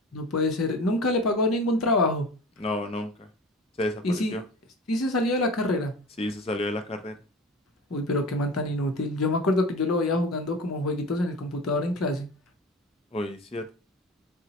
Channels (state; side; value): normal; both; correlation 0.35